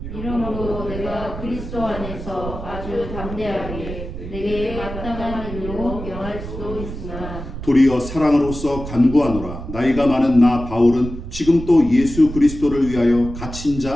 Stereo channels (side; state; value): right; noise; rumble, 9 dB below the sound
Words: 이러므로 내가 그리스도 안에서 아주 담대하게 내게 마땅한 일로 명할 수 있으나, 도리어 사랑으로서 간구하노라. 나이가 많은 나 바울은 지금 또 예수 그리스도를 위하여 갇힌